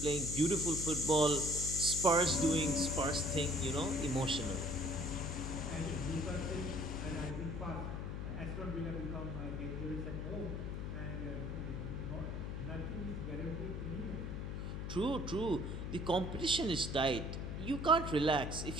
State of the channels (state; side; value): noise; left; hum, 4 dB below the sound